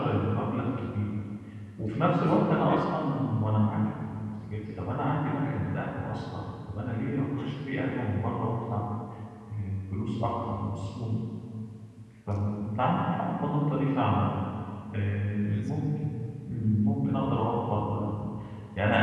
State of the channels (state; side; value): identical; both; correlation 1.00